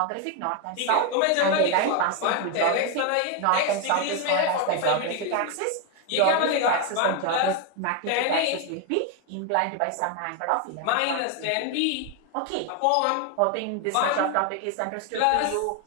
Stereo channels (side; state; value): both; different; correlation 0.01